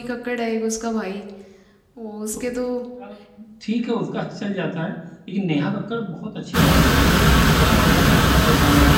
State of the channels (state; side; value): identical; both; correlation 1.00